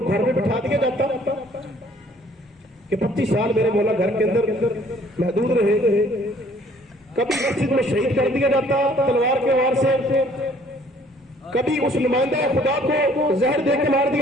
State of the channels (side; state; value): both; normal; correlation 0.58